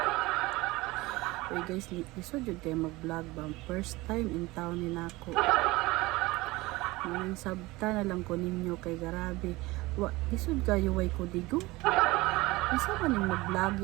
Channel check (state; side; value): quieter; left; 21.0 dB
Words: Uy guys, lisod yun kayo mag-vlog ba? First time in town ni nako. Ngayon sabta na lang ko ninyo kay garabi. Lisod kayo way ko digo? Isa ba ning